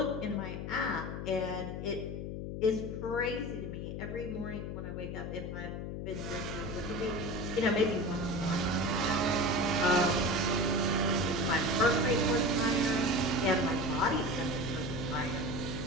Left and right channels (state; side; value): noise; left; hum, 5 dB below the sound